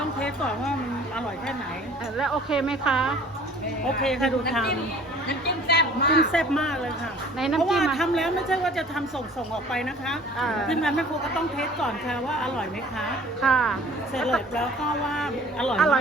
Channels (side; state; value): both; normal; correlation 0.50